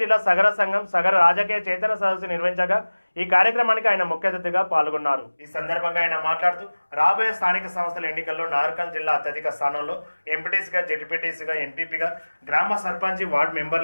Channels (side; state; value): both; inverted; correlation -1.00